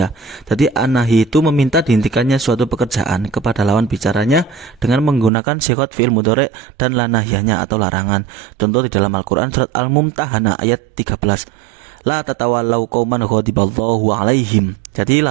Jadi an-nahyi itu meminta dihentikannya suatu pekerjaan kepada lawan bicaranya dengan menggunakan sighot fi'il mudhari' dan la nahyanya atau larangan. Contoh di dalam Al-Qur'an surat Al-Mumtahanah ayat 13. La tatawallau qauman ghadiballahu alaihim. Jadi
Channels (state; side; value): drops out; left; at 5.3 s